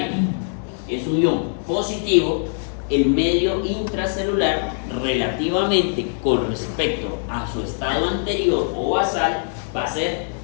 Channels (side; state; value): right; silent; 64 dB below the other